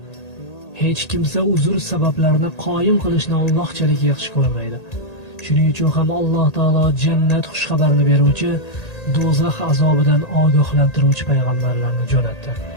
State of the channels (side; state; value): right; late; 1.8 ms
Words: Hech kimsa uzr sabablarini qoyim qilishni Allohchalik yaxshi ko'rmaydi. Shuning uchun ham Alloh taolo jannat xushxabarini beruvchi, do'zax azobidan ogohlantiruvchi payg'ambarlarni jo'natdi.